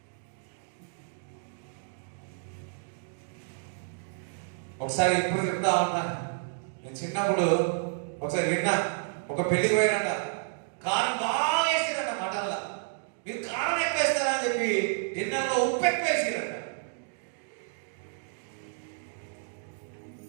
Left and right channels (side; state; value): left; silent; digital silence